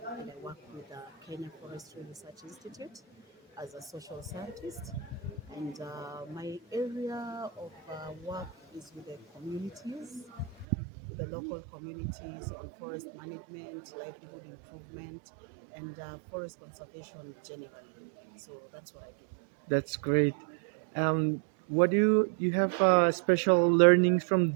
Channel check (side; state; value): left; drops out; at 10.7 s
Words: and I work with the Kenya Forestry Research Institute as a social scientist. And my area of work is with the communities, with the local communities on forest management, livelihood improvement, and forest conservation generally. So that's what I do. That's great. What do you have special learnings from